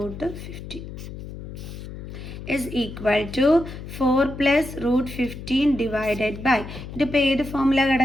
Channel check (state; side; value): noise; left; hum, 11 dB below the sound